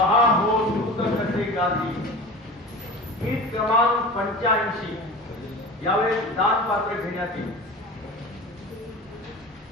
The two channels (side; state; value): both; normal; correlation 0.34